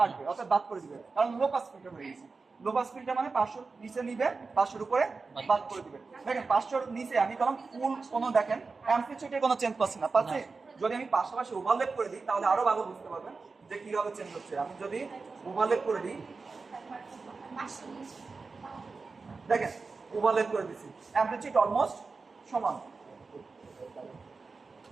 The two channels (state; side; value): quieter; left; 4.3 dB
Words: অর্থাৎ বাদ করে দিবে, কারণ লো পাস ফিল্টার হয়ে গেছে। লো পাস ফিল্টার মানে 500 নিচে নিবে, 500 এর উপরে বাদ করে দিবে। দেখেন 500 এর নিচে আমি কলম ফুল কোনো দেখেন অ্যাম্পলিটিউডে কোনো চেঞ্জ পাচ্ছি না, পাচ্ছি। যদি আমি পাশাপাশি ওভারল্যাপ করে দিই তাহলে আরো ভালো বুঝতে পারবেন যে কিভাবে চেঞ্জ হচ্ছে। আমি যদি ওভারল্যাপ করে দিই, দেখেন ওভারল্যাপ করে দিছি, অ্যাম্পলিটিউড অলমোস্ট সমান,